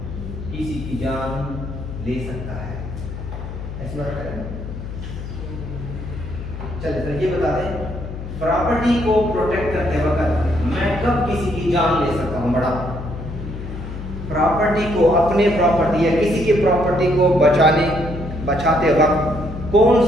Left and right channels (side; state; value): left; noise; hum, 8 dB below the sound